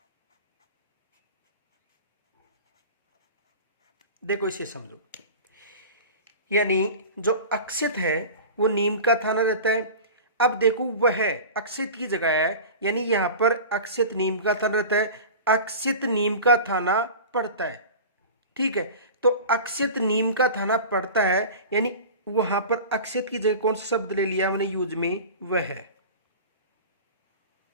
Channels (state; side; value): inverted; both; correlation -0.34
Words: देखो, इसे समझो। यानी जो अक्षित है वो नीम का थाना रहता है। अब देखो वह अक्षित की जगह है, यानी यहां पर अक्षित नीम का थाना रहता है, अक्षित नीम का थाना पड़ता है। ठीक है, तो अक्षित नीम का थाना पड़ता है, यानी वहां पर अक्षित की जगह कौन सा शब्द ले लिया हमने यूज में, वह है।